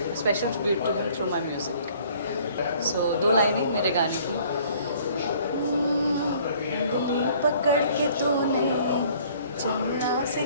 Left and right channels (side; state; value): both; inverted; correlation -0.56